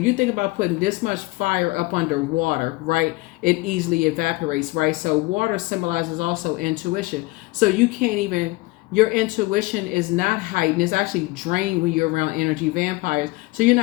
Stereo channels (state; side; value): quieter; right; 21.8 dB